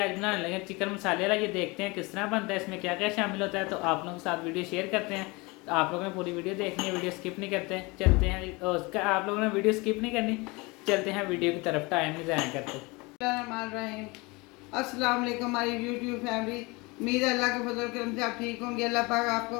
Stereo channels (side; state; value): right; quieter; 25.4 dB